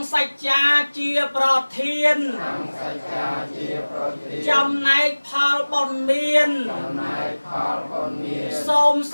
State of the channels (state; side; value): inverted; both; correlation -1.00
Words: សច្ចាជាប្រធានចំណែកផលបុណ្យមានសូម